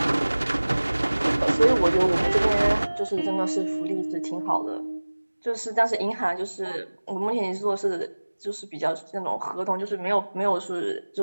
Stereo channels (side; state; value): both; inverted; correlation -1.00